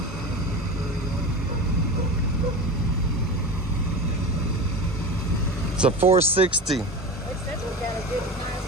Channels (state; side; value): normal; both; correlation 0.28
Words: It's a 460. It says we got a good,